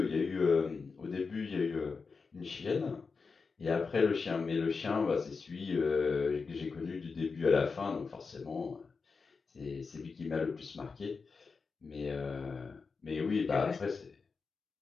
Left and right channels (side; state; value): right; quieter; 4.8 dB